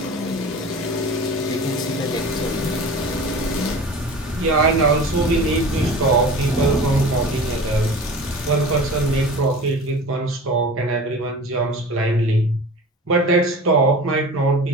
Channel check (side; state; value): both; normal; correlation 0.37